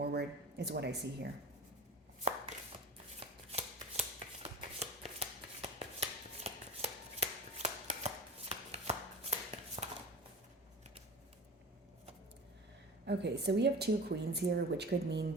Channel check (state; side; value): normal; both; correlation 0.34